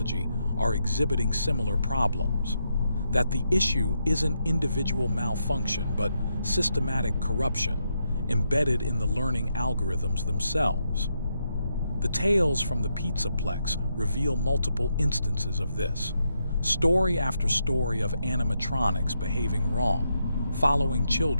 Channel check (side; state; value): both; inverted; correlation -0.81